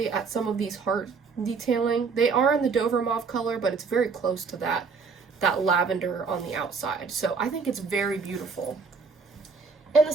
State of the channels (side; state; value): left; quieter; 5.0 dB